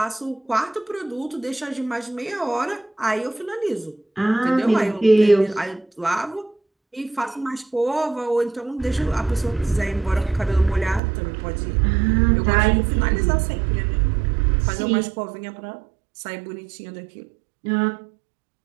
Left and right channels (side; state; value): left; drops out; at 11.0 s